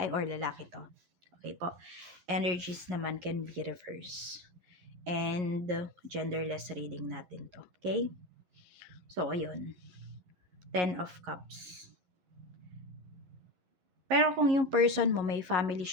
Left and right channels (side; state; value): left; late; 11 ms